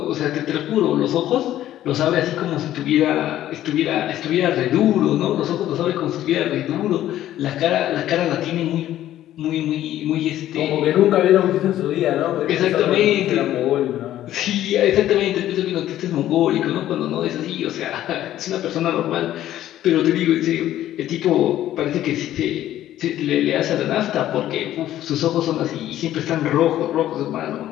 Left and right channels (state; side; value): quieter; right; 12.9 dB